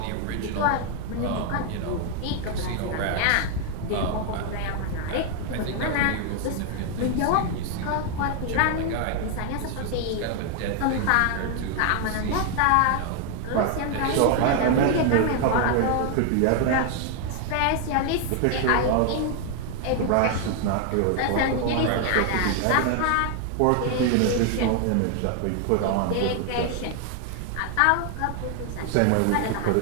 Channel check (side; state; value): both; different; correlation 0.00